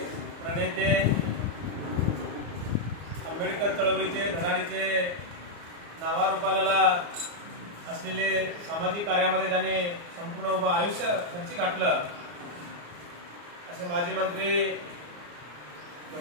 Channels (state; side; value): late; left; 34 ms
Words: प्रणेते आंबेडकर चळवळीचे धनाडीचे नावारूपाला असलेले सामाजिक कार्यामध्ये ज्याने संपूर्ण उभं आयुष्य खर्ची घातलं असे माजी मंत्री